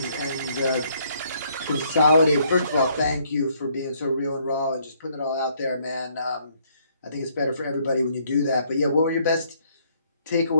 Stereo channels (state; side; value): inverted; both; correlation -0.67